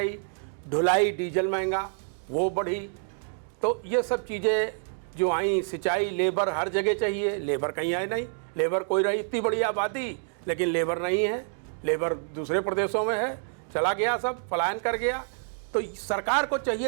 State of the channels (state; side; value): silent; left; 60 dB below the other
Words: ढुलाई डीजल महंगा वो बढ़ी। तो ये सब चीज़ें जो आई, सिंचाई, लेबर हर जगह चाहिए, लेबर कहीं आए नहीं। लेबर कोई रही, इतनी बड़ी आबादी, लेकिन लेबर नहीं है, लेबर दूसरे प्रदेशों में है, चला गया, सब पलायन कर गया। तो सरकार को